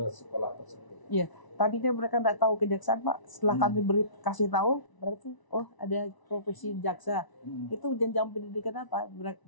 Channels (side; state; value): right; late; 1.0 ms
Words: sekolah tersebut. Iya, tadinya mereka nggak tahu kejaksaan Pak. Setelah kami kasih tahu, berarti oh ada profesi jaksa. Itu jenjang pendidikan apa?